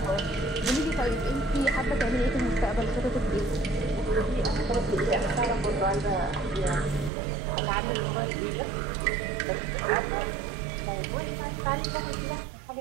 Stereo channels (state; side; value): drops out; left; at 7.1 s